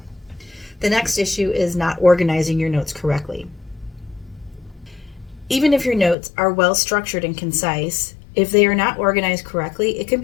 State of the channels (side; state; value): right; drops out; at 6.2 s